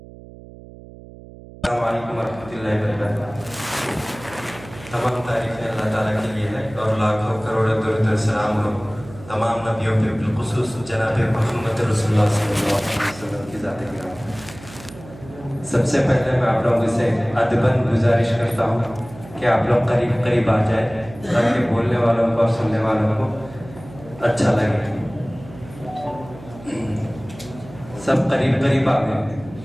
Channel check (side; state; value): right; noise; hum, 18 dB below the sound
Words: السلام علیکم ورحمۃ اللہ وبرکاتہ۔ تمام تعریفیں اللہ تعالیٰ کے لیے ہے اور لاکھوں کروڑوں درود و سلام ہو تمام نبیوں پہ، بالخصوص جناب محمد رسول اللہ صلی اللہ علیہ وسلم کی ذات گرامی۔ سب سے پہلے میں آپ لوگوں سے ادباً گزارش کرتا ہوں کہ آپ لوگ قریب قریب آ جائیں تاکہ بولنے والوں کو اور سننے والوں کو اچھا لگے۔ سب قریب قریب آ گئے،